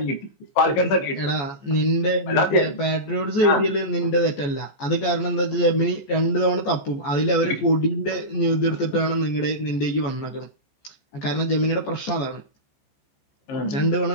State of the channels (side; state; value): right; late; 14 ms